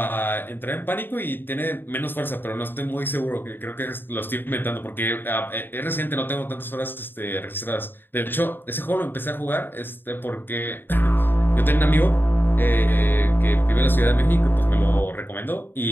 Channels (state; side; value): late; right; 0.097 ms